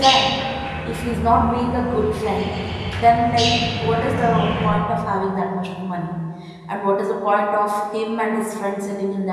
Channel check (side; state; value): both; identical; correlation 1.00